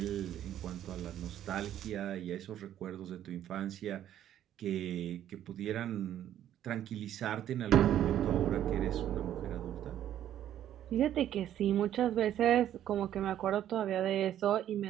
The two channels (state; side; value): quieter; left; 11.3 dB